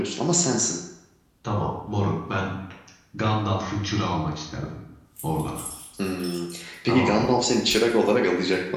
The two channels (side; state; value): both; identical; correlation 1.00